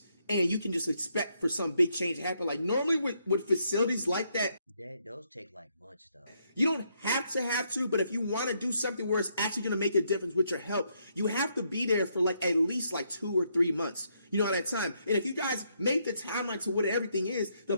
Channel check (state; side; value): inverted; both; correlation -0.75